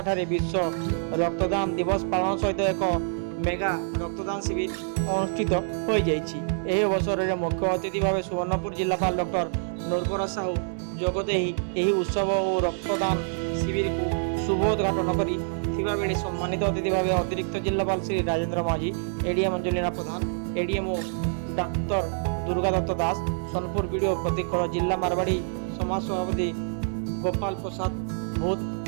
ବିଶ୍ୱ ରକ୍ତଦାନ ଦିବସ ପାଳନ ସହିତ ଏକ ମେଗା ରକ୍ତଦାନ ଶିବିର ଅନୁଷ୍ଠିତ ହୋଇଯାଇଛି। ଏହି ଅବସରରେ ମୁଖ୍ୟ ଅତିଥି ଭାବେ ସୁବର୍ଣ୍ଣପୁର ଜିଲ୍ଲାପାଳ ଡକ୍ଟର ନୂରବର ସାହୁ ଯୋଗଦେଇ ଏହି ଉତ୍ସବ ଓ ରକ୍ତଦାନ ଶିବିରକୁ ଶୁଭ ଉଦ୍ଘାଟନ କରିଥିବା ବେଳେ ସମ୍ମାନିତ ଅତିଥି ଭାବେ ଅତିରିକ୍ତ ଜିଲ୍ଲାପାଳ ଶ୍ରୀ ରାଜେନ୍ଦ୍ର ମାଝୀ, ଏଡିଏମ୍ ଅଞ୍ଜଲିନା ପ୍ରଧାନ, ଏଡିଏମ୍ଓ ଡାକ୍ତର ଦୁର୍ଗା ଦତ୍ତ ଦାସ, ସୋନପୁର ବିଡିଓ ପ୍ରତୀକ, ଜିଲ୍ଲା ମାରବାଡ଼ି ସମାଜ ସଭାପତି ଗୋପାଳ ପ୍ରସାଦ ଭୂତ,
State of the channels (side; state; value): left; silent; digital silence